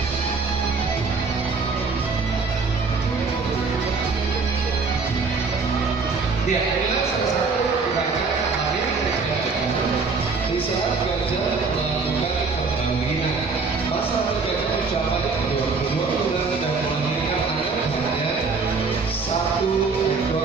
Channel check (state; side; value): quieter; left; 4.5 dB